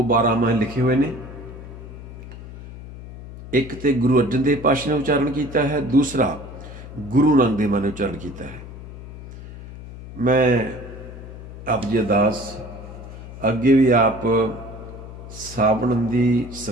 बारामाह लिखे हुए ने। एक तो गुरु अर्जन देव पातशाह ने उच्चारण किया है, दूसरा गुरु नानक देव ने उच्चारण किया है। मैं आप जी अरदास अगे भी आप सावण की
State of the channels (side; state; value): left; noise; hum, 13 dB below the sound